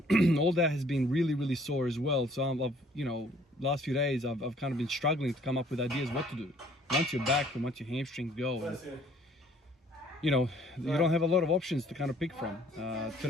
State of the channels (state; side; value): normal; both; correlation 0.58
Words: all that has been really sore as well. So last few days I've kind of been struggling to come up with ideas what to do once you're back and once your hamstrings go. And, you don't have a lot of options to kind of pick from.